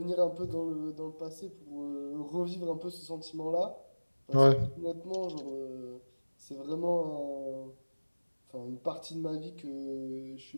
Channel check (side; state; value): both; inverted; correlation -1.00